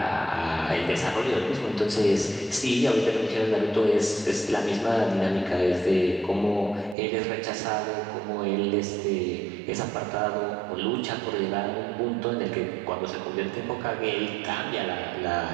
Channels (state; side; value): drops out; left; at 7.0 s